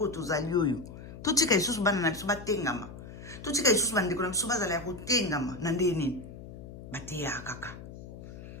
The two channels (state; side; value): noise; left; hum, 14 dB below the sound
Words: oyo tozali oyo totika lisusu bana na biso batengama totika lisusu bandeko na biso bazala ya kotengama na nde nini bateyaka